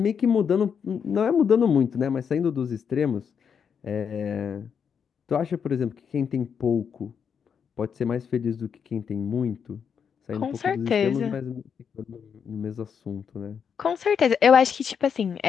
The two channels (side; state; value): right; quieter; 7.0 dB